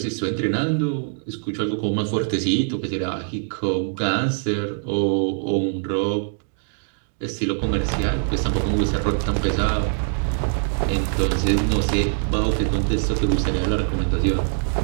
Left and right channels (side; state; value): left; silent; digital silence